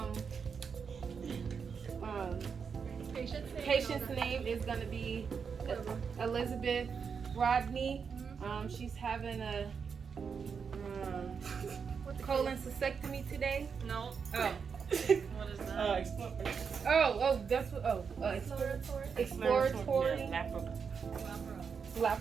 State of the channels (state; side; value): quieter; left; 6.1 dB